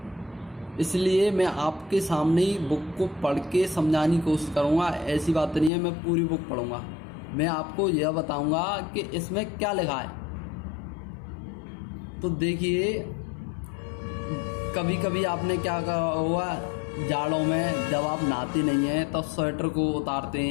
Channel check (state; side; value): drops out; right; at 5.7 s